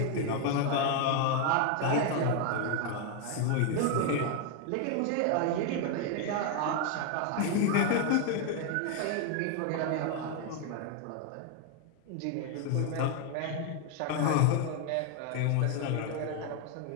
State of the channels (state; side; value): different; both; correlation 0.01